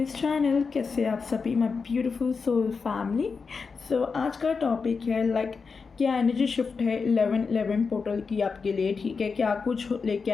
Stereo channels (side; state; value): right; quieter; 5.0 dB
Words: channel. कैसे आप सभी my beautiful soul family. So आज का टॉपिक है क्या एनर्जी शिफ्ट है 11-11 पोर्टल की आपके लिए। ठीक है, क्या कुछ लेके